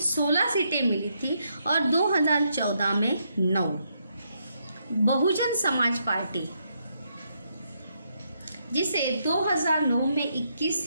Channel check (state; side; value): inverted; both; correlation -0.77